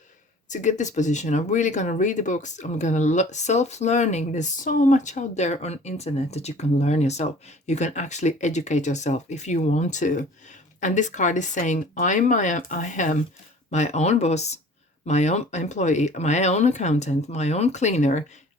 to get this position. I'm really going to read the books. I'm going to self-learning. There's so much out there on internet that you can learn yourself. You can actually educate yourself if you want to. And this card is saying, I am my own boss, my own employee, my own accountant, my own cleaner,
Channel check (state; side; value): normal; both; correlation 0.48